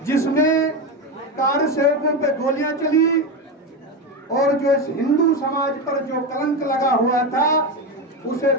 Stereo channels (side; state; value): both; normal; correlation 0.15